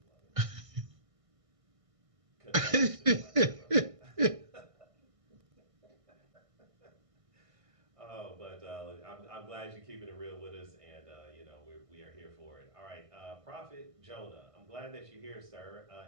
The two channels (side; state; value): left; late; 1.6 ms